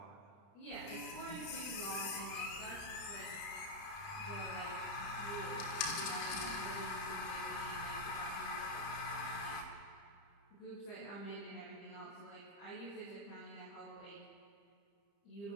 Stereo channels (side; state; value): right; late; 30 ms